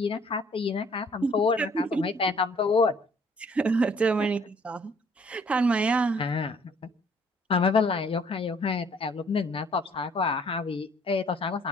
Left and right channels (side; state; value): both; normal; correlation 0.59